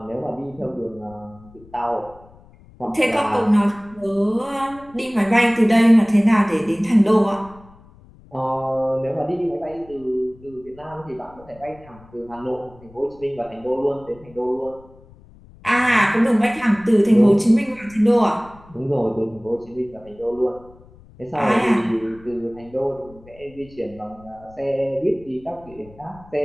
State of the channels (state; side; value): noise; left; rumble, 24 dB below the sound